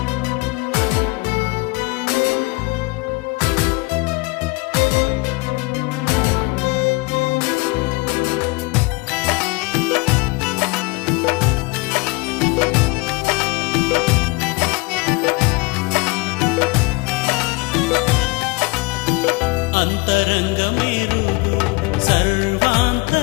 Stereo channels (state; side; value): quieter; right; 25.7 dB